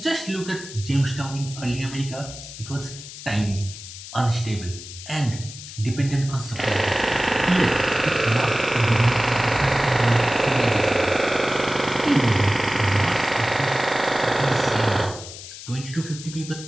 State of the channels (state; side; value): noise; left; hiss, 13 dB below the sound